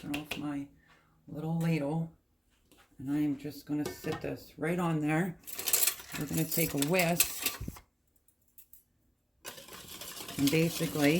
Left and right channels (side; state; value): both; identical; correlation 1.00